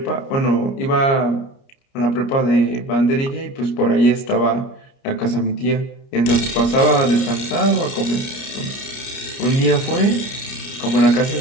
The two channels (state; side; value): late; right; 30 ms